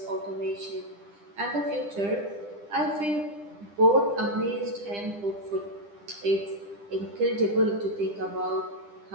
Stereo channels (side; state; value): left; late; 9.9 ms